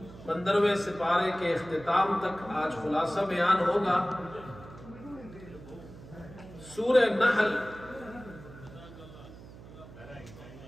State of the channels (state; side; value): noise; right; hum, 17 dB below the sound